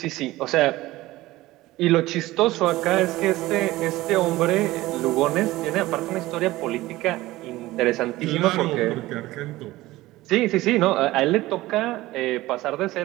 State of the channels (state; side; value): quieter; left; 17.8 dB